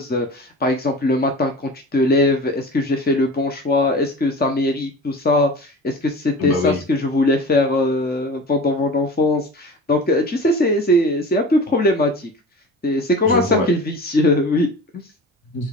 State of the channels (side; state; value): both; normal; correlation 0.36